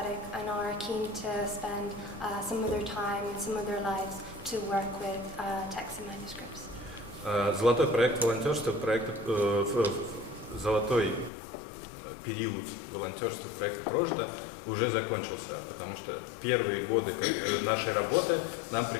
and are keen to spend some of their time and some of their lives to work with texts and manuscripts. Золотой проект волонтерства, золотой период волонтерства проекта «Прожито» уже закончился, потому что первые годы нашей работы нам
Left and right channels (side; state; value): right; drops out; at 11.3 s